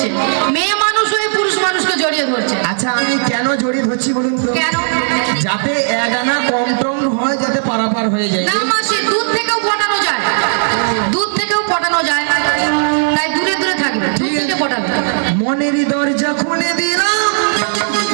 মেয়ে মানুষ হয়ে পুরুষ মানুষকে জড়িয়ে ধরছে। আচ্ছা আমি কেন জড়িয়ে ধরছি বলুন তো? কেন? যাতে এক আনা কম টম হয়, যাতে পারাপার হয়ে যায়। না মাসি, দুধ থেকেও পটানো যায়, দুধ থেকেও পটানো যায়। তাই দূরে দূরে থাকবে, দুধ থেকে পটাবে। মনেরই দরজা খুলে দিলাম,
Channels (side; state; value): left; silent; 62 dB below the other